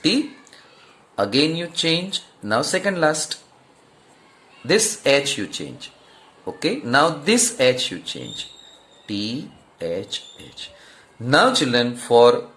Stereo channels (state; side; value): identical; both; correlation 1.00